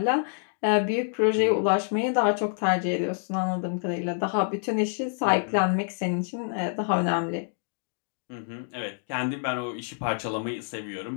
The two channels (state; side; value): silent; right; digital silence